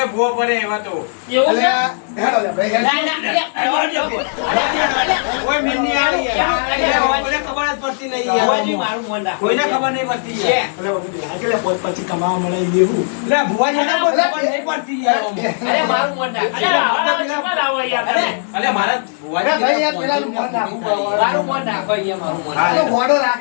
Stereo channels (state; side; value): silent; right; digital silence